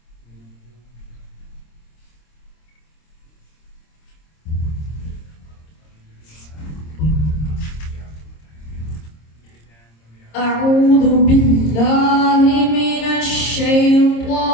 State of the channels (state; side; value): late; right; 26 ms